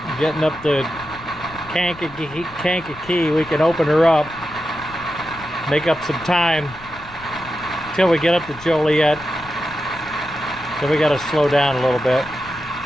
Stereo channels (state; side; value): noise; left; rumble, 19 dB below the sound